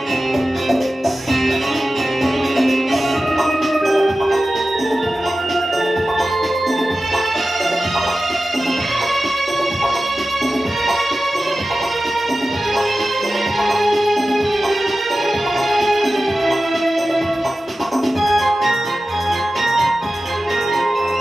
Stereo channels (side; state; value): both; normal; correlation 0.94